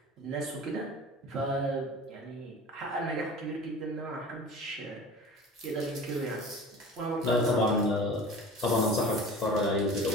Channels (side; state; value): both; normal; correlation 0.38